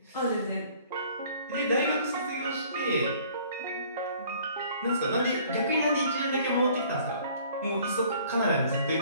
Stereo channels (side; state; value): both; inverted; correlation -0.55